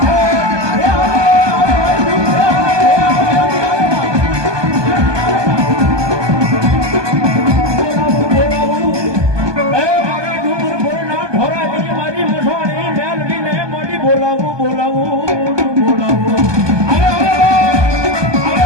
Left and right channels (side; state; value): left; late; 1.2 ms